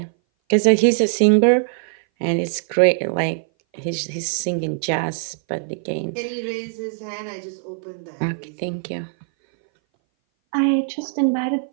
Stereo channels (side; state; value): left; silent; 59 dB below the other